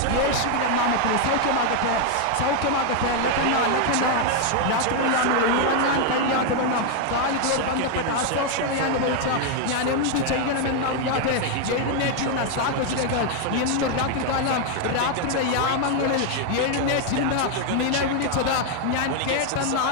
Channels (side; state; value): both; different; correlation 0.00